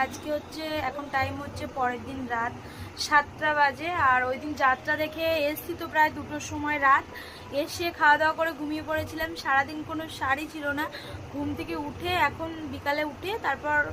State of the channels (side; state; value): both; identical; correlation 1.00